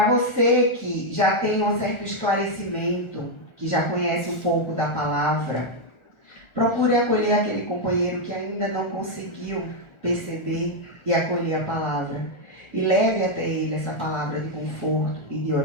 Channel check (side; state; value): right; late; 1.4 ms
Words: você que já tem um certo esclarecimento, que já conhece um pouco da palavra, procure acolher aquele companheiro que ainda não conseguiu perceber e acolher a palavra. E leve até ele essa palavra de conforto e de